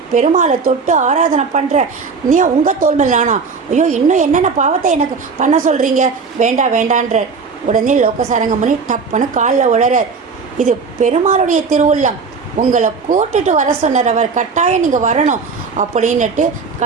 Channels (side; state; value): left; quieter; 5.1 dB